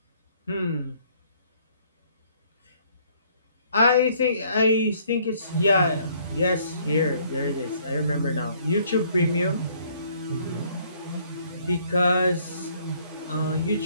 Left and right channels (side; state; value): both; inverted; correlation -0.63